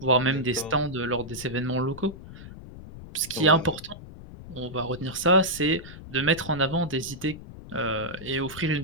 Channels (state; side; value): noise; left; rumble, 15 dB below the sound